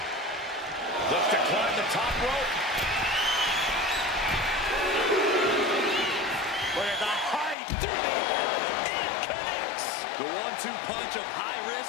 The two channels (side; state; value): right; drops out; at 7.6 s